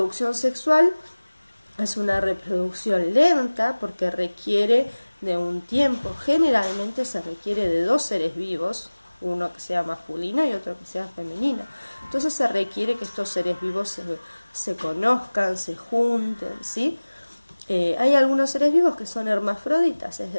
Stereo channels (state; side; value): inverted; both; correlation -1.00